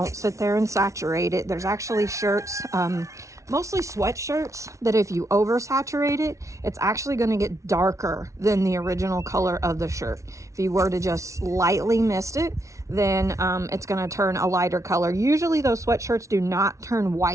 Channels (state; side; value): late; left; 0.14 ms